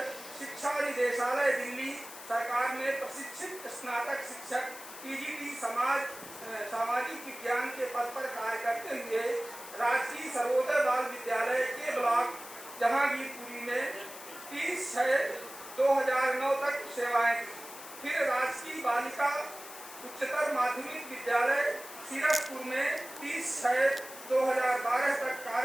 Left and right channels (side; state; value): left; noise; hiss, 14 dB below the sound